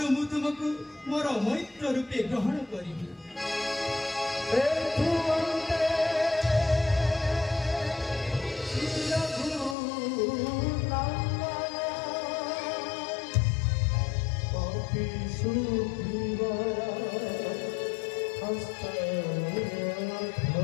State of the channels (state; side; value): drops out; right; at 9.8 s